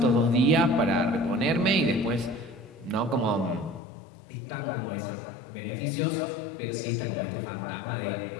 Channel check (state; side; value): drops out; right; at 3.8 s